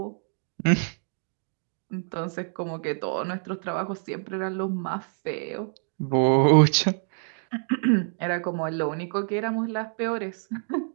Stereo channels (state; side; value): silent; left; 60 dB below the other